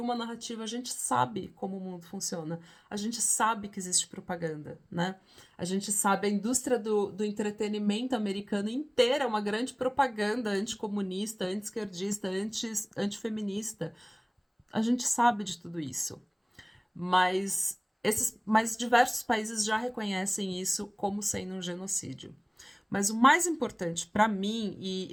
uma narrativa. A gente sabe como o mundo funciona. A gente sabe que existe propaganda, né? A gente sabe a indústria do entretenimento americano inteira é uma grande propaganda anticomunista, anti-esquerdista, antifeminista. A gente sabe de tudo isso. Mas diversos países já reconhecem isso como sendo um genocídio. Mas o mais importante para mim,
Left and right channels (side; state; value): both; identical; correlation 1.00